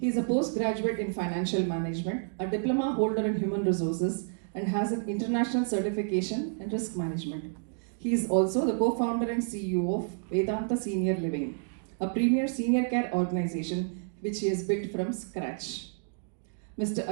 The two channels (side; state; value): left; silent; digital silence